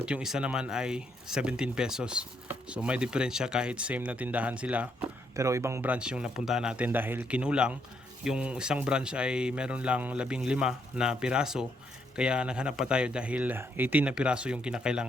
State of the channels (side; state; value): both; normal; correlation 0.74